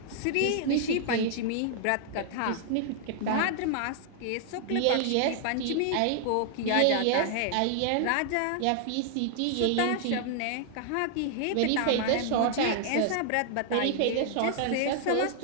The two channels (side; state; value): both; different; correlation 0.00